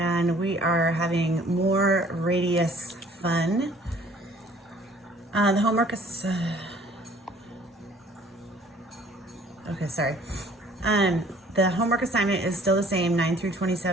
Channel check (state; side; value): normal; both; correlation 0.55